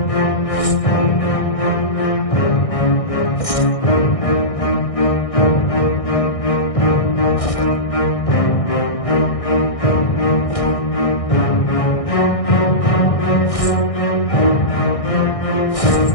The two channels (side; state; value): right; late; 1.6 ms